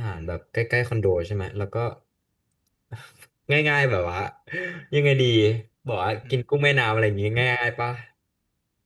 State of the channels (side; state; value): both; identical; correlation 1.00